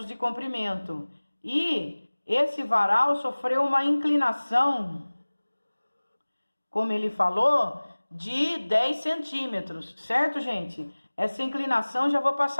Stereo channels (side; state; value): both; inverted; correlation -1.00